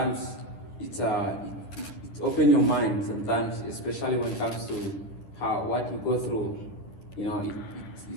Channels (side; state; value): right; late; 10 ms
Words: it opens your mind sometimes, especially when it comes to what you go through, it